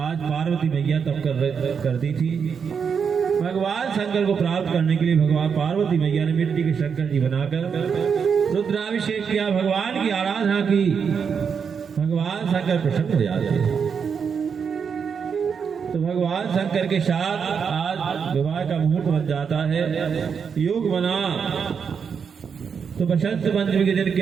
पार्वती मैया तब करती थी। भगवान शंकर को प्राप्त करने के लिए भगवान पार्वती मैया ने मिट्टी के शंकर जी बनाकर रुद्राभिषेक किया, भगवान की आराधना की। भगवान शंकर प्रसन्न हो जाते हैं। तो भगवान शंकर के साथ आज विवाह का मुहूर्त बन जाता है, योग बना। तो बसंत पंचमी के दिन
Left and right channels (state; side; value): quieter; left; 6.5 dB